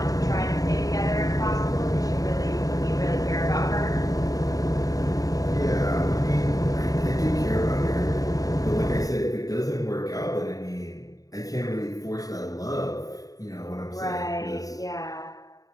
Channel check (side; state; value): right; late; 0.17 ms